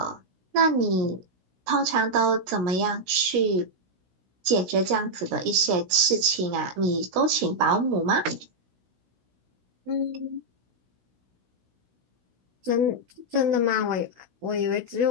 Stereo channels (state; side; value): late; left; 16 ms